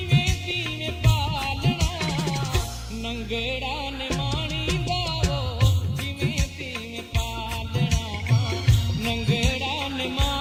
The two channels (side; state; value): both; identical; correlation 1.00